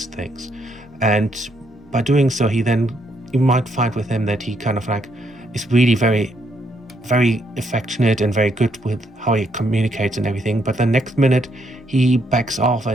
things. And by doing so, you might find with him that he kind of like is really very, very affectionate and very good with how he communicates and everything, but the next minute he backs off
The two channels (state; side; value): normal; both; correlation 0.74